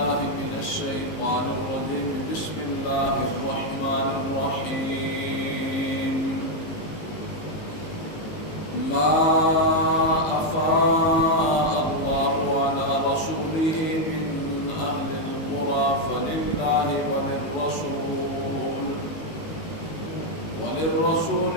من الشيطان الرجيم. بسم الله الرحمن الرحيم. ما أفاء الله على رسوله من أهل القرى فلله وللرسول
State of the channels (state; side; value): late; right; 19 ms